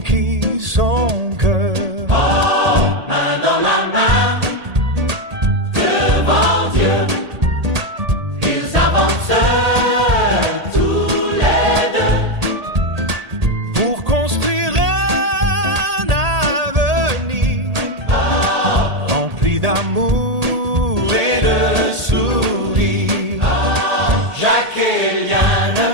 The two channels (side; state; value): left; late; 1.8 ms